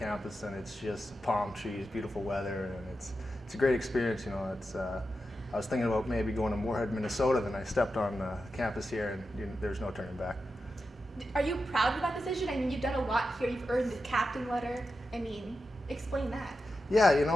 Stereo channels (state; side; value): normal; both; correlation 0.89